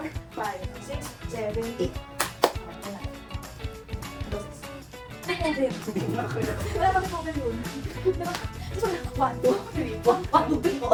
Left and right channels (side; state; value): both; identical; correlation 1.00